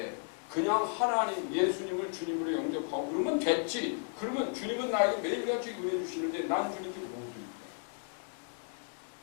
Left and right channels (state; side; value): silent; right; 55 dB below the other